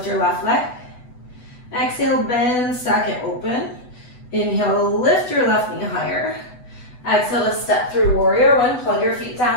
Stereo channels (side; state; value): right; late; 8.1 ms